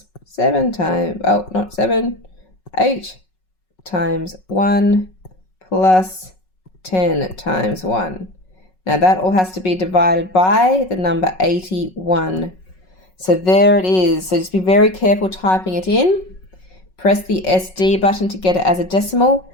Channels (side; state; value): right; late; 5.4 ms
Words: 7 times, oh, not 7, 8 times 1 plus 10 times 1. Now that all has to be divided by the number 81. So there it is. So just be very careful typing it in. Press the SD button to get it as a decimal,